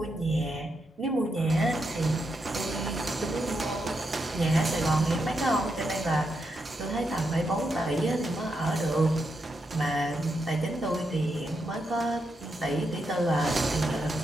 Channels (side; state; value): both; normal; correlation 0.83